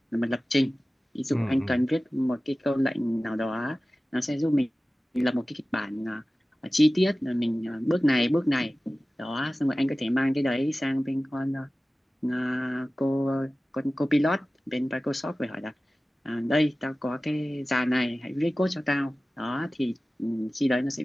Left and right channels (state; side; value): normal; both; correlation 0.96